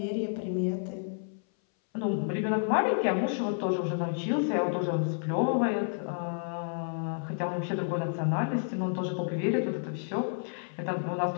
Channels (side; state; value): right; silent; 58 dB below the other